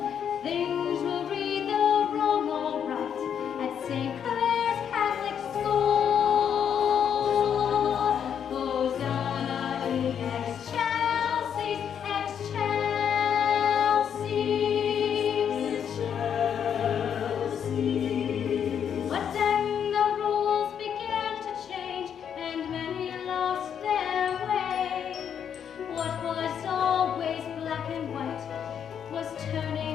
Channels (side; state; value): right; quieter; 8.3 dB